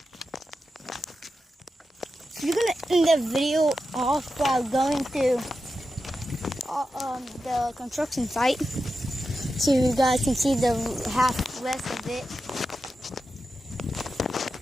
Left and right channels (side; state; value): both; normal; correlation 0.90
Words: You're gonna end the video off by going to the construction site, so you guys can see the half rest of it.